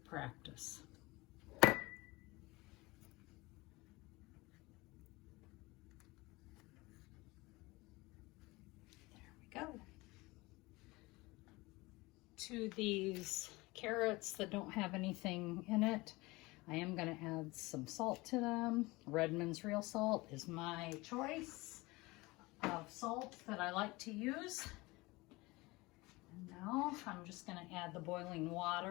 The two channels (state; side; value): quieter; right; 22.4 dB